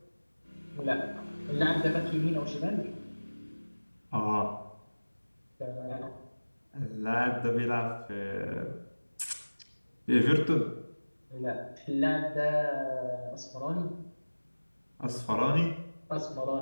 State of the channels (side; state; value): both; inverted; correlation -1.00